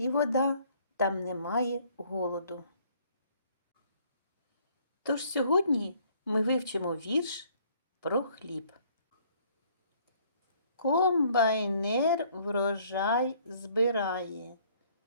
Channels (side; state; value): both; inverted; correlation -0.61